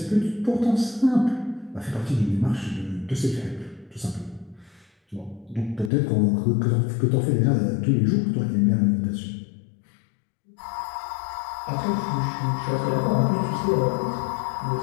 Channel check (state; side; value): drops out; right; at 5.9 s